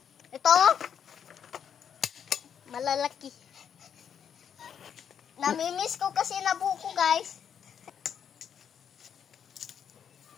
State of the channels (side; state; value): right; quieter; 8.1 dB